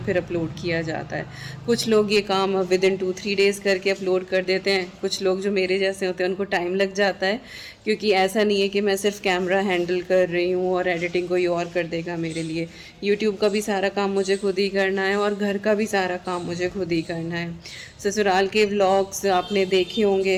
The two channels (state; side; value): identical; both; correlation 1.00